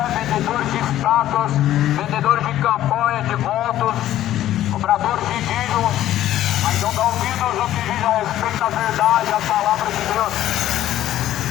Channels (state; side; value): quieter; right; 13.0 dB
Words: vendedores de estátuas, vendedores de campanha, de votos, cobradores de dízimos, mas não dão ouvidos no que diz a respeito da verdade, a palavra de Deus.